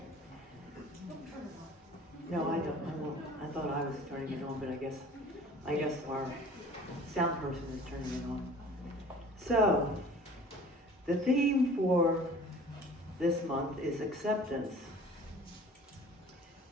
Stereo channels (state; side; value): normal; both; correlation 0.47